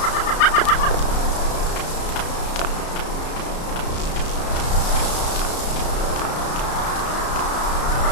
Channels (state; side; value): late; right; 33 ms